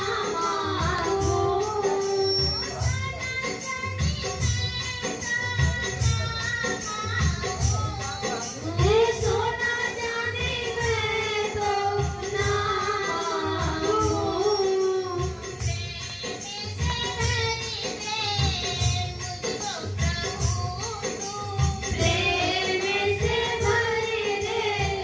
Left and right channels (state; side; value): identical; both; correlation 1.00